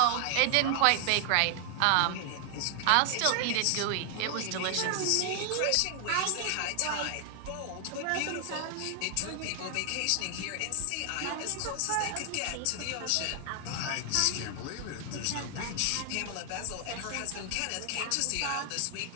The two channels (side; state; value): both; different; correlation 0.00